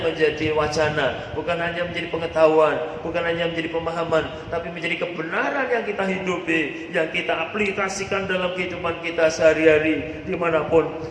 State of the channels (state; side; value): identical; both; correlation 1.00